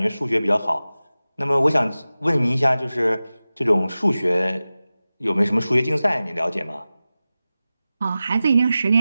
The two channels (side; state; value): both; inverted; correlation -0.96